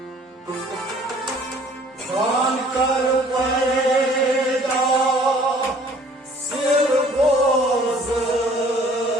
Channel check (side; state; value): both; normal; correlation 0.55